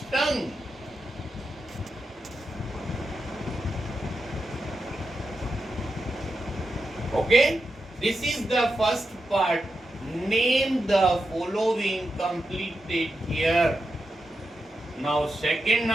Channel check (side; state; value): both; normal; correlation 0.88